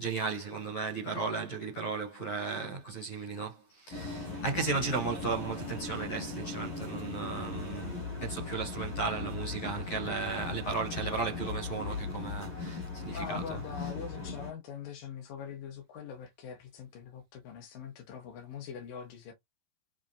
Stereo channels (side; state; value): right; late; 11 ms